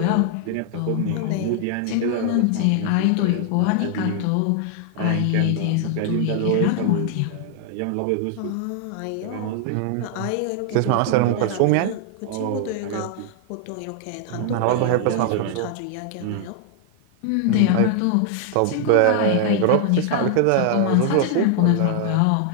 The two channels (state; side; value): different; both; correlation 0.00